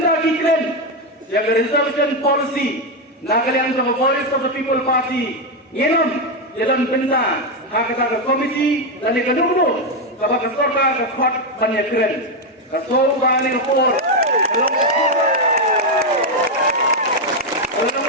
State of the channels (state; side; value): normal; both; correlation 0.05